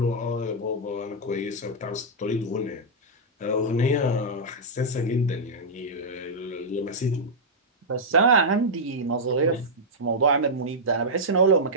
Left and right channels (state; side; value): normal; both; correlation -0.07